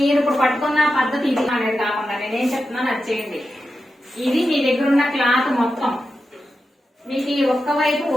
ఇప్పుడు పట్టుకున్న పద్ధతి ఇది అనేది కాకుండా నేనేం చెప్తున్నాను అది చేయండి. ఇది మీ దగ్గర ఉన్న క్లాత్ మొత్తం మీకు ఈ ఒక్క వైపు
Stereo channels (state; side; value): normal; both; correlation 0.90